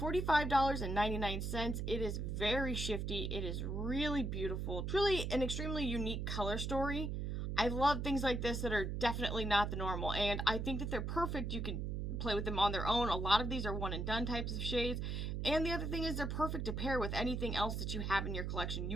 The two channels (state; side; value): noise; right; hum, 2 dB below the sound